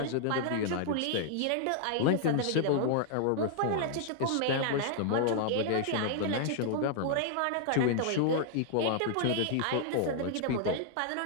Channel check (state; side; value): different; both; correlation -0.01